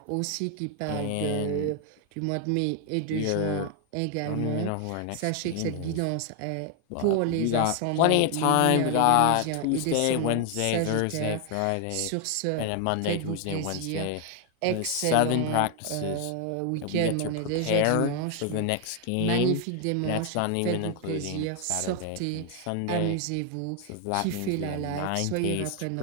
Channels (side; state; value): both; different; correlation 0.00